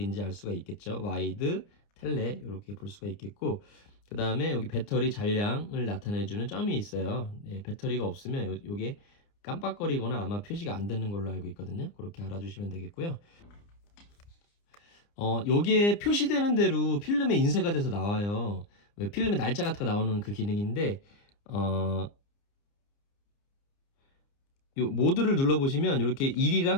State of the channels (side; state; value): right; late; 29 ms